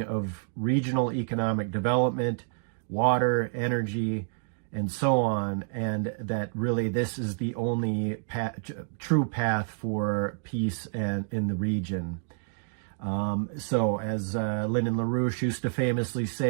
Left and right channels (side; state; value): left; silent; digital silence